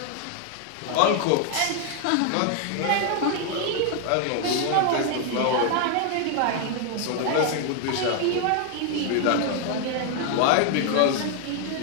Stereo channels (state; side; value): different; both; correlation 0.00